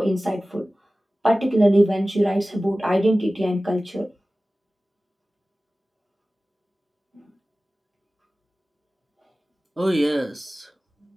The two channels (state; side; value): normal; both; correlation 0.97